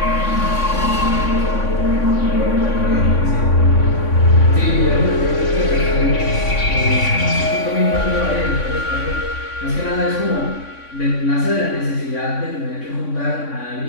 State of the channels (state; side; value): late; right; 3.6 ms